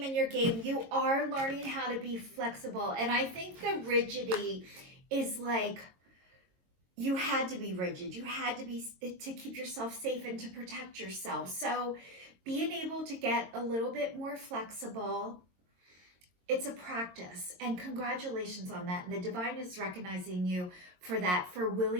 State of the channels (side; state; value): left; late; 22 ms